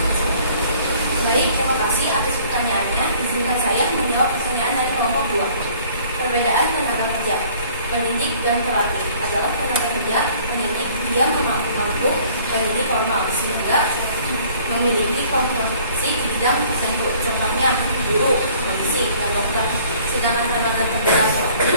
Baik, terima kasih atas pertanyaannya. Izinkan saya menjawab pertanyaan dari kelompok 2. Perbedaan tenaga kerja pendidik dan terlatih adalah tenaga kerja pendidik dia mampu pendidik formal sehingga memiliki kompetensi di bidang tertentu, contohnya guru, polisi, dan dokter. Sedangkan tenaga kerja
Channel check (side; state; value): both; inverted; correlation -0.55